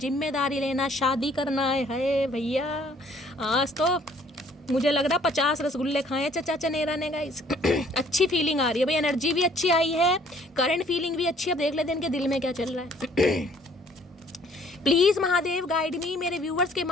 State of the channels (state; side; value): normal; both; correlation 0.59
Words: लेना, शादी करना है भैया। आज तो मुझे लग रहा 50 रसगुल्ले खाए चचा चनेरा ने गाइस। अच्छी फीलिंग आ रही है भाई, एनर्जी भी अच्छी आई है, करंट फीलिंग भी अच्छी है। अब देख लेते हैं इनके दिल में क्या चल रहा है। प्लीज़ महादेव गाइड मी, मेरे व्यूवर्स के